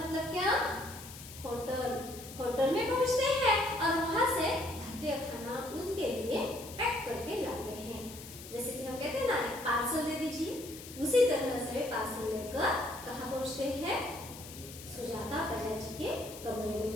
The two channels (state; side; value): noise; left; hiss, 14 dB below the sound